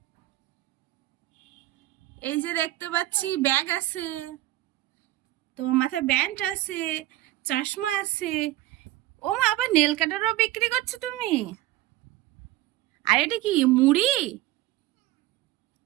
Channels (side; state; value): left; quieter; 16.4 dB